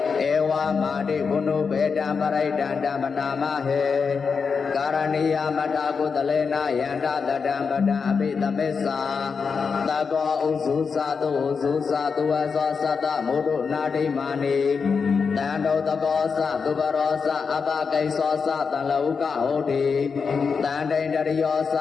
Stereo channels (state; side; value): quieter; right; 5.5 dB